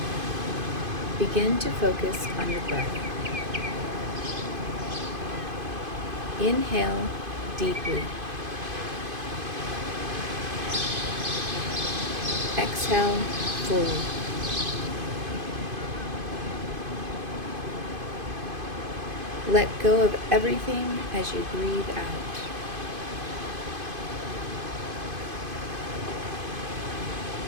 Begin to focus on your breath. Inhale deeply. Exhale fully. Let go of everything as you breathe out.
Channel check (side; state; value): left; late; 2.5 ms